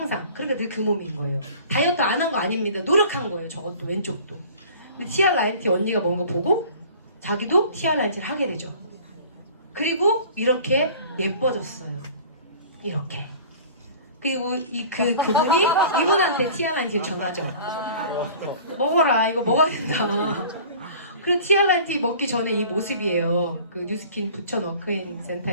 그러니까 늘 그 몸인 거예요. 다이어트 안 한 거 아닙니다. 노력한 거예요. 저것도 왼쪽도. 근데 티아 라인티 언니가 먹은 거 보고 자기도 티아 라인티를 하게 되죠. 그리고 이렇게 예뻐졌어요. 이렇게. 그리고 그분이 이분한테 티아 라인티를 전하죠. 먹어라. 이거 먹어야 된다. 그리고 티아 라인티 먹기 전에 이 모습이에요. 그 뉴스킨 부천 워크인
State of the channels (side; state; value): both; inverted; correlation -0.45